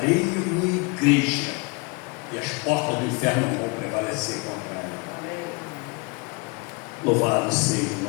uma igreja, e as portas do inferno não vão prevalecer contra ela. Amém. Louvado seja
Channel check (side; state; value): right; quieter; 29.1 dB